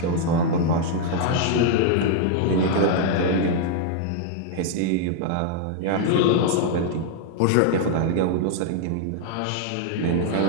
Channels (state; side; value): different; both; correlation 0.00